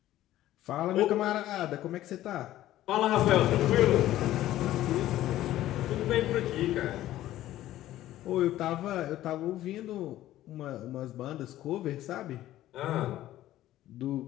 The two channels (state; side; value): quieter; right; 14.1 dB